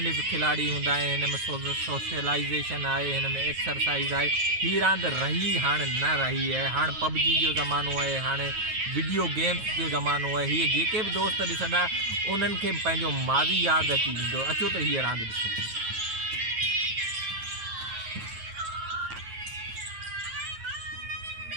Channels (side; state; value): left; late; 9.3 ms